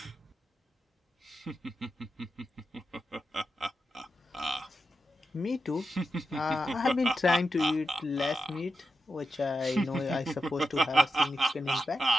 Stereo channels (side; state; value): both; normal; correlation 0.87